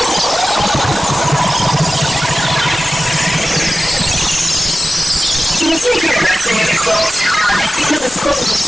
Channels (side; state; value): both; normal; correlation 0.95